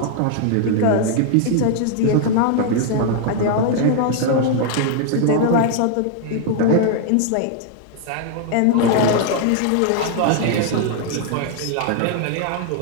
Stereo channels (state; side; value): different; both; correlation 0.00